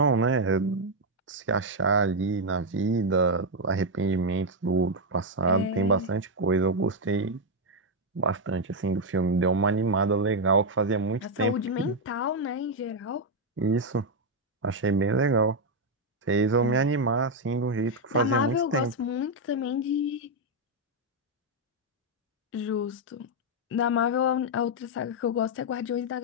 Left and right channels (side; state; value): both; normal; correlation 0.01